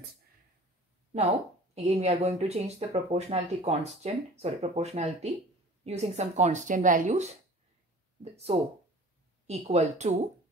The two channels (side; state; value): both; normal; correlation 0.44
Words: Now again we are going to change the proportionality using some constant values. So equal to